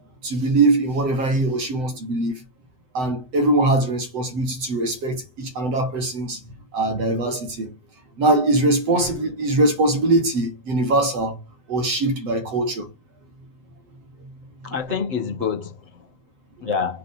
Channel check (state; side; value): late; left; 7.9 ms